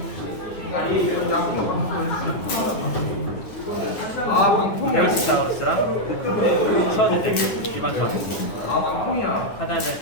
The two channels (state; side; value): late; right; 9.5 ms